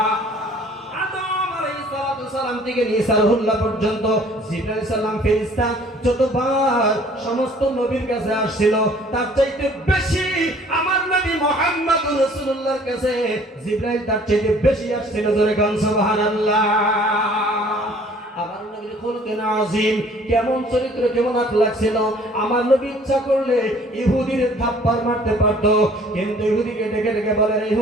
আদম আলাইহিস সালাম থেকে নিয়ে সারহুল্লাহ পর্যন্ত জিবরাইল আলাইহিস সালাম ফেরেশতা যতবার সমস্ত নবীর কাছে আসছিল, তার চাইতে বেশি আমার নবী মুহাম্মদুর রাসূলুল্লাহর কাছে জিবরাইল তার চাইতে বেশি আসছিল। জোরে গান সুবহানাল্লাহ। আমার নবীর খুলুকিন আযীম, কেমন চরিত্র, কেমন আখলাক ছিল। আমার নবী ইচ্ছা করলে ইহুদির থাপ্পড় মারতে পারত, কিন্তু ইহুদিকে ডেকে ডেকে বলেন,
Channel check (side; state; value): both; normal; correlation 0.54